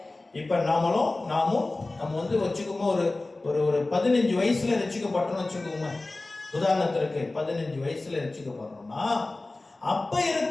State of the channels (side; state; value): right; quieter; 3.1 dB